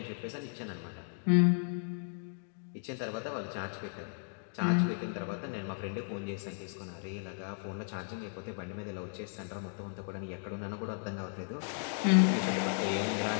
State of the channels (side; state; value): right; silent; 54 dB below the other